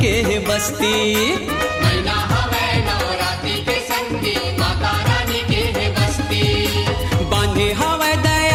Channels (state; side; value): identical; both; correlation 1.00